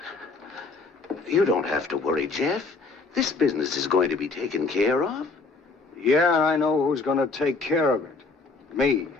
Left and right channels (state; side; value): quieter; right; 3.9 dB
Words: You don't have to worry, Jeff. This business is going to be taken care of. Yeah, I know who's gonna take care of it. Me.